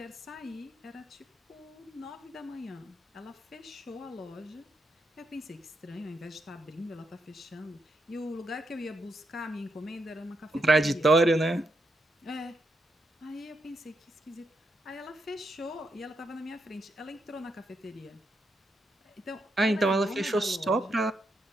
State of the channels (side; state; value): both; normal; correlation 0.81